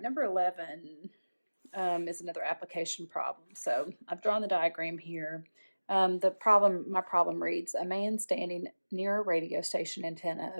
number 11 is another application problem. So I've drawn the diagram here. My problem reads, a man standing near a radio station antenna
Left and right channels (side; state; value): both; inverted; correlation -1.00